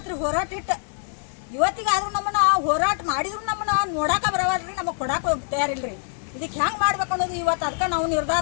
ಹೋರಾಟ ಇಟ್ಟು ಇವತ್ತಿಗಾದ್ರೂ ನಮ್ಮನ್ನ ಹೋರಾಟ ಮಾಡಿದ್ರು ನಮ್ಮನ್ನ ನೋಡಾಕ ಬರವಲ್ರಿ ನಮಗೆ ಕೊಡಾಕ ತಯಾರಿಲ್ರಿ ಇದಕ್ಕೆ ಹೆಂಗೆ ಮಾಡ್ಬೇಕು ಅನ್ನೋದು ಇವತ್ತು ಅದಕ್ಕೆ ನಾವು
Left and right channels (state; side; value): silent; right; digital silence